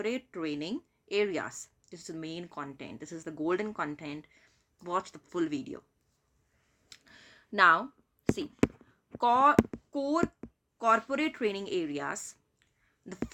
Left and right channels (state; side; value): identical; both; correlation 1.00